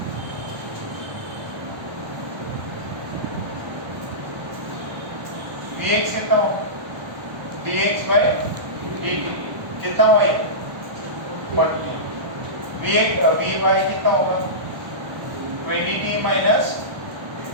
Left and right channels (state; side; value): late; left; 1.1 ms